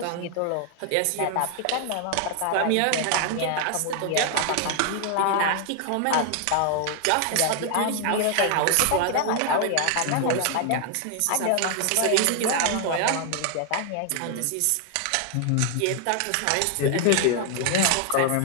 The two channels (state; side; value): different; both; correlation 0.00